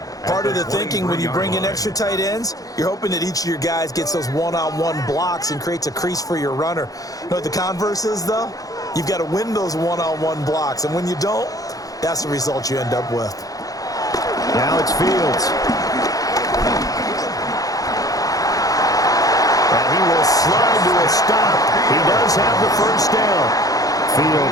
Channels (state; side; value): late; right; 0.17 ms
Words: Part of the thinking when you bring in extra tight ends, you're hoping that each of your guys gets those one-on-one blocks and creates a crease for your runner. You know what the converse is, though? You've got to win those one-on-one blocks, and when you don't, that's the result you end up with. Now it's Fields. And he will slide to a stop. He does have the first down.